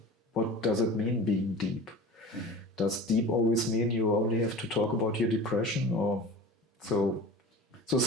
what does it mean, being deep? Does deep always mean you only have to talk about your depression, or so? So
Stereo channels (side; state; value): both; normal; correlation 0.36